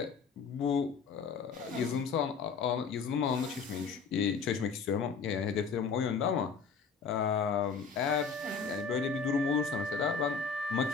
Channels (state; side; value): quieter; right; 5.5 dB